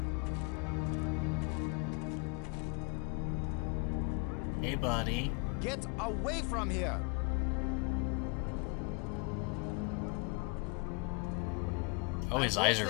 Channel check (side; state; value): right; quieter; 30.9 dB